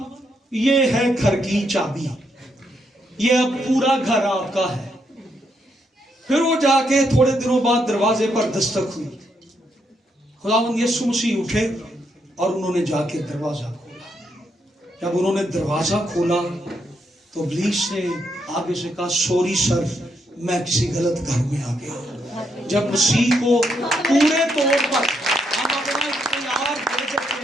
ये है घर की चाबी, ये अब पूरा घर आपका है। फिर वो जाके थोड़े दिनों बाद दरवाजे पर दस्तक हुई। खुदावंद यीशु मसीह उठे और उन्होंने जाके दरवाजा खोला। जब उन्होंने दरवाजा खोला तो इब्लीस ने आगे से कहा सॉरी सर, मैं किसी गलत घर में आ गया। जब मसीह को पूरे तौर पर हम अपना इख्तियार दे देते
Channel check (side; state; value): both; normal; correlation 0.78